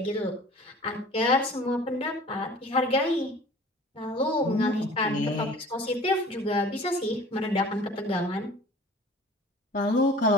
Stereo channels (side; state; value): both; normal; correlation 0.46